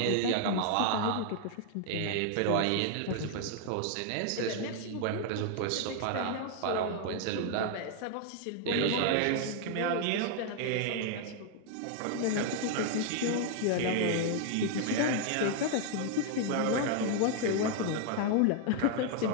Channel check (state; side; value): different; both; correlation 0.00